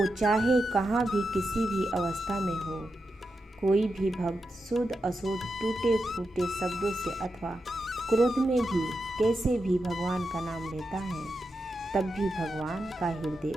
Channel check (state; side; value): normal; both; correlation 0.88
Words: चाहे कहाँ भी किसी भी अवस्था में हो, कोई भी भक्त शुद्ध अशुद्ध टूटे फूटे शब्दों से अथवा क्रोध में भी कैसे भी भगवान का नाम लेता है, तब भी भगवान का हृदय